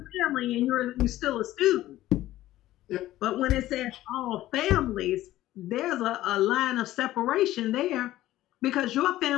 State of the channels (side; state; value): right; quieter; 15.0 dB